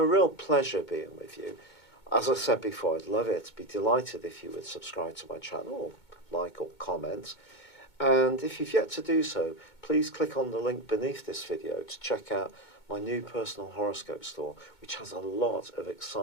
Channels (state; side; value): late; right; 2.2 ms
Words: real pleasure being with you. As I said before, I'd love it, be delighted if you would subscribe to my channel, like or comment. And if you've yet to do so, please click on the link beneath this video to check out my new personal horoscope store, which has a lot of